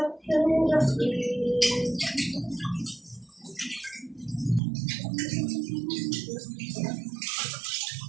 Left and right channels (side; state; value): left; drops out; at 4.6 s